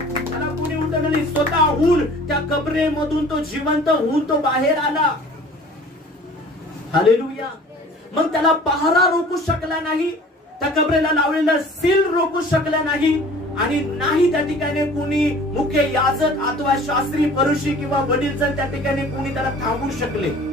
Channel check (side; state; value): both; normal; correlation 0.47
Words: त्याला कोणी उठवलं नाही, स्वतःहून त्या कबरेमधून तो जिवंत होऊन तो बाहेर आला. हालेलुया. मग त्याला पहारा रोखू शकला नाही, त्या कबरेला लावलेला सील रोखू शकला नाही, आणि नाही त्या ठिकाणी कोणी मुख्य याजक अथवा शास्त्री, फरीसी किंवा वडील जर त्या ठिकाणी कोणी त्याला थांबवू शकले.